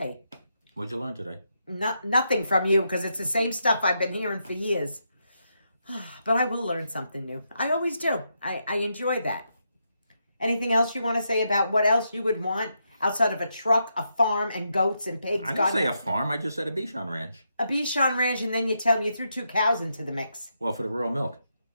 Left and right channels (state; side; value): inverted; both; correlation -0.82